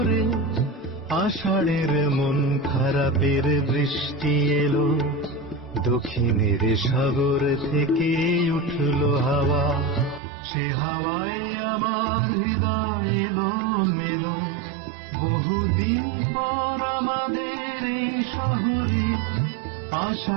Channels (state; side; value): drops out; left; at 10.2 s